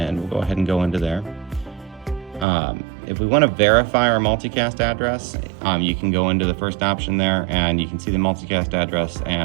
we'll go ahead and go into there. If we want to verify our multicast address, you can go into the first option there and you can see the multicast address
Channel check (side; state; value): left; drops out; at 2.5 s